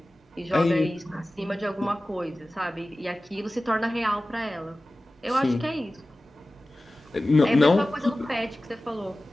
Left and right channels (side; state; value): both; normal; correlation 0.96